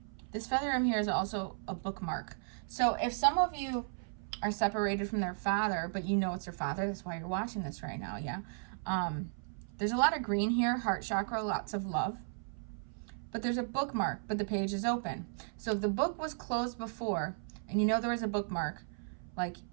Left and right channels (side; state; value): left; silent; 54 dB below the other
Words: This feather in here is also a bookmark. So if some of you are separated from their father, but you know it's their father, that's why you're watching this right now, yeah? There's a lot of green here, heart chakra, lots of love. But there's a bookmark, but the page is open. So if the book was closed before, and you know there was a bookmark, like